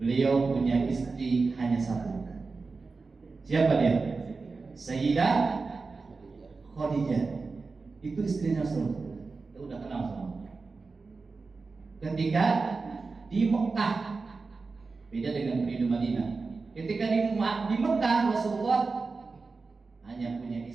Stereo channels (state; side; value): quieter; left; 4.2 dB